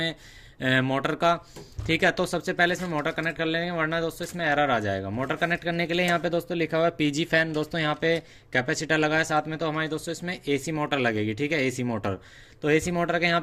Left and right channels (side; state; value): both; identical; correlation 1.00